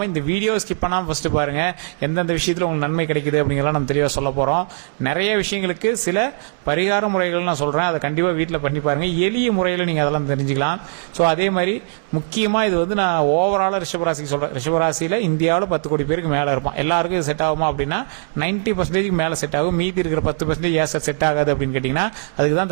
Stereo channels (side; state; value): left; silent; digital silence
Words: இந்த வீடியோ ஸ்கிப் பண்ணாம ஃபர்ஸ்ட் பாருங்க, எந்தெந்த விஷயத்துல உங்களுக்கு நன்மை கிடைக்குது அப்படிங்கிறத நம்ம தெளிவாக சொல்ல போறோம். நிறைய விஷயங்களுக்கு சில பரிகார முறைகள் நான் சொல்றேன், அதை கண்டிப்பா வீட்டில் பண்ணி பாருங்க. எளிய முறையில் நீங்க அதெல்லாம் தெரிஞ்சுக்கலாம். ஸோ அதே மாதிரி முக்கியமா இது நான் ஓவரால ரிஷபராசிக்கு சொல்றேன். ரிஷபராசியில இந்தியாவில் 10 கோடி பேருக்கு மேல இருப்பான். எல்லாருக்கும் செட் ஆகுமா அப்படின்னா 90% மேல செட் ஆகும். மீதி இருக்கிற 10% ஏன் செட் ஆகாது அப்படின்னு கேட்டீங்கன்னா, அதுக்கு தான்